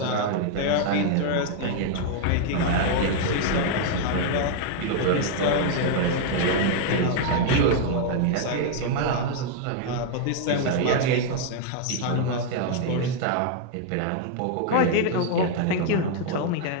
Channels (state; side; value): different; both; correlation 0.00